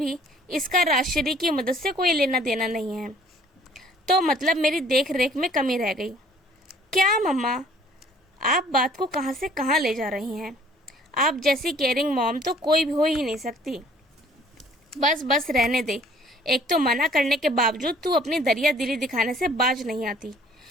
इसका राजश्री की मदद से कोई लेना देना नहीं है। तो मतलब मेरी देख रेख में कमी रह गई। क्या मम्मा, आप बात को कहाँ से कहाँ ले जा रही हैं? आप जैसी केयरिंग मॉम तो कोई भी हो ही नहीं सकती। बस बस रहने दे। एक तो मना करने के बावजूद तू अपनी दरिया दिली दिखाने से बाज नहीं आती,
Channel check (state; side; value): normal; both; correlation 0.56